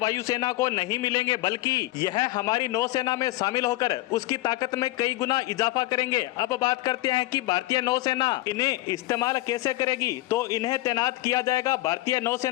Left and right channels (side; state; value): right; quieter; 18.1 dB